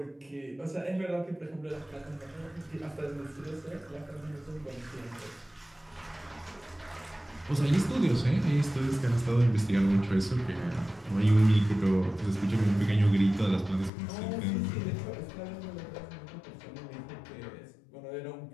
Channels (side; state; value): right; drops out; at 13.9 s